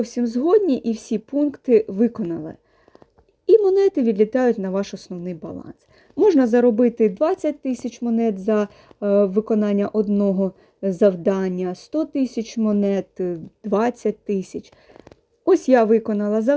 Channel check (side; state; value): both; identical; correlation 1.00